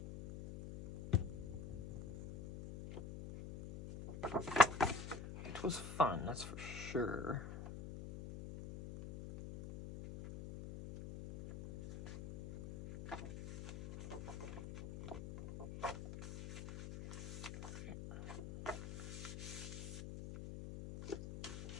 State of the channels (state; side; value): noise; left; hum, 8 dB below the sound